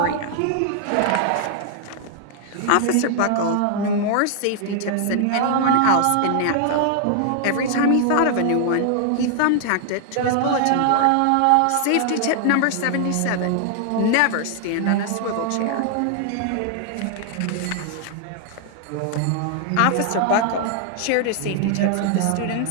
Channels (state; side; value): different; both; correlation 0.00